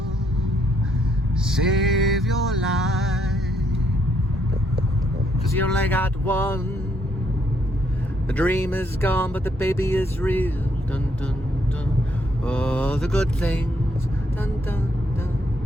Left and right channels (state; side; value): normal; both; correlation 0.73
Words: save your life, 'cause you only got one. The dream is gone, but the baby is real. Dun dun dun. Oh, the good things. Dun dun dun